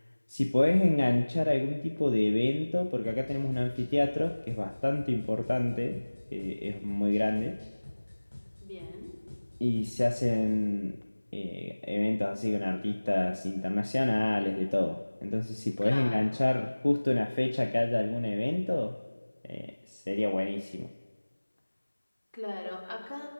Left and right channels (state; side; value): inverted; both; correlation -1.00